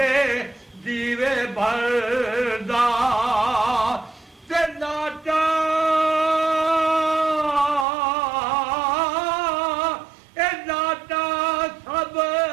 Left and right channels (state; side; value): drops out; left; at 7.9 s